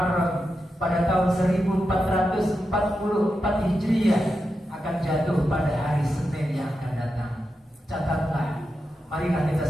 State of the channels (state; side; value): normal; both; correlation 0.88